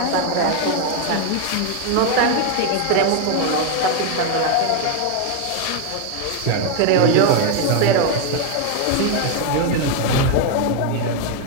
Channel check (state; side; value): different; both; correlation 0.01